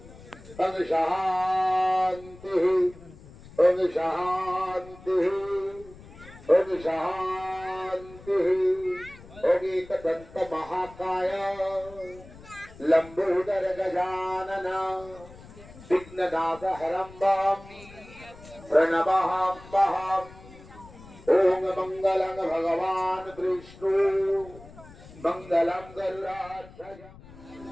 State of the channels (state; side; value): noise; left; rumble, 20 dB below the sound